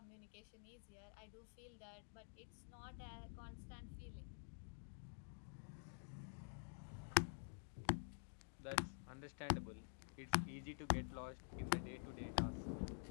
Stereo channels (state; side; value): silent; right; digital silence